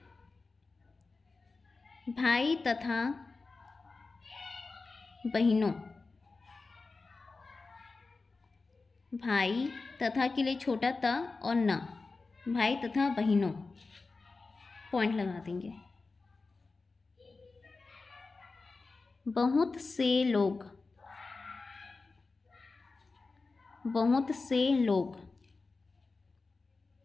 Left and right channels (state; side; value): quieter; right; 3.9 dB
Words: भाई तथा बहनों, भाई तथा के लिए छोटा त और न, भाई तथा बहनों पॉइंट लगा देंगे। बहुत से लोग, बहुत से लोग,